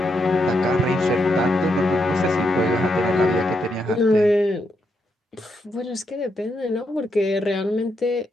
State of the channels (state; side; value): normal; both; correlation 0.81